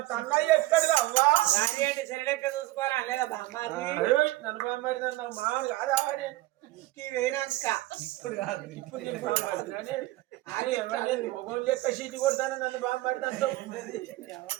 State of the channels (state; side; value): quieter; left; 18.1 dB